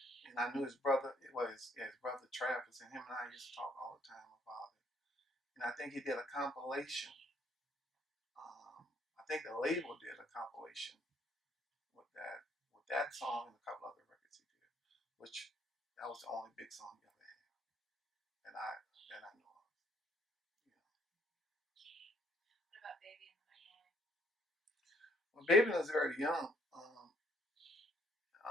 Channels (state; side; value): normal; both; correlation 0.65